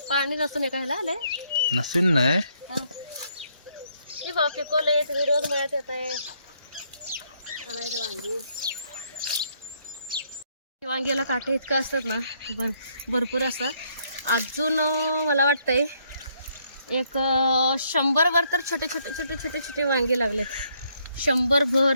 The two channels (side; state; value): both; inverted; correlation -0.71